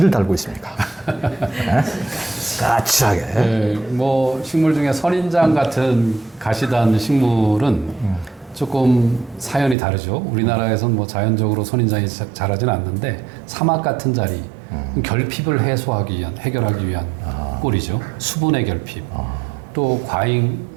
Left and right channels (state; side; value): drops out; left; at 9.8 s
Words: 달고 있습니까? 네? 까칠하게. 네, 뭐 식물 중에 선인장 같은 가시단 식물은 조금 사연이 다르죠. 우리나라에서는 뭐 자연적으로 선인장이 자라지는 않는데 사막 같은 자리, 결핍을 해결하기 위한 꼴이죠. 수분의 결핍. 또